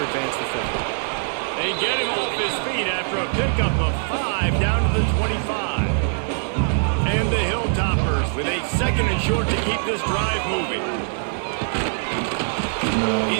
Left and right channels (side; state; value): left; silent; 64 dB below the other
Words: advance the football. They get him off his feet after a pickup of 5 down to the 25. And the Hilltoppers with a second and short to keep this drive moving.